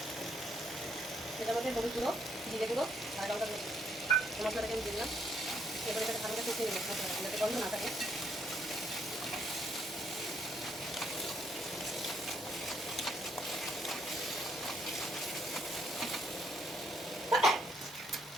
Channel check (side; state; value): both; normal; correlation 0.72